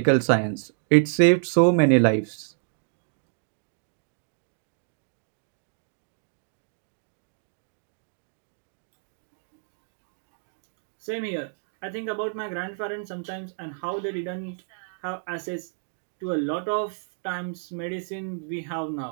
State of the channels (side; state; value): left; silent; 59 dB below the other